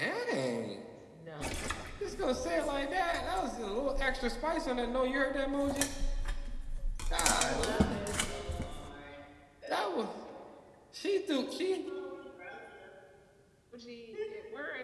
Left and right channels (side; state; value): both; identical; correlation 1.00